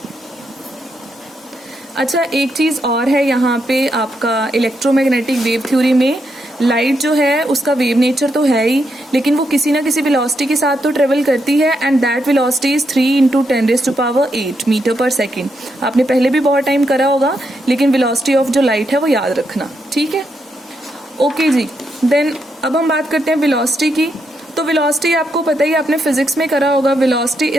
अच्छा, एक चीज और है यहाँ पे आपका इलेक्ट्रोमैग्नेटिक वेव थ्योरी में, लाइट जो है उसका वेव नेचर तो है ही, लेकिन वो किसी ना किसी वेलोसिटी के साथ तो ट्रेवल करती है, and that velocity is 3 × 10⁸ metre per second. आपने पहले भी बहुत टाइम करा होगा, लेकिन वेलोसिटी ऑफ जो लाइट है वो याद रखना, ठीक है। ओके जी, देन अब हम बात करते हैं वेलोसिटी की। तो वेलोसिटी आपको पता ही, आपने फिजिक्स में करा होगा, velocity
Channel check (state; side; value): normal; both; correlation 0.81